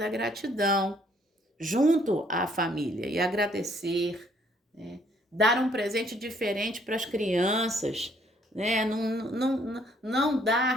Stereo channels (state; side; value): normal; both; correlation 0.65